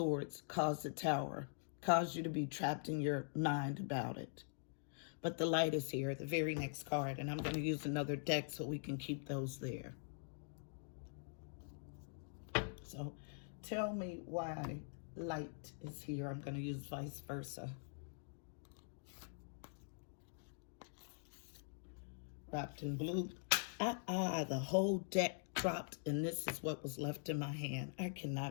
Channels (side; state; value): right; silent; digital silence